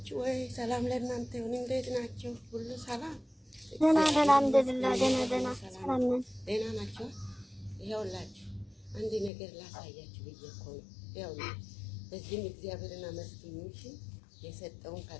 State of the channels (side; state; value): right; drops out; at 9.3 s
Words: ወይ? ሰላም ለእናንተ ይሁን። እንዴት ናችሁ? ሁሉ ሰላም? ደህና አልሐምዱሊላህ። ደህና ሰላም ነን። ደህና ናችሁ? ይኸውላችሁ አንድ ነገር ላሳያችሁ ብዬ እኮ ነው። ይኸውላችሁ በዚህም እግዚአብሔርን አመስግኑ። እሺ የሰጠውን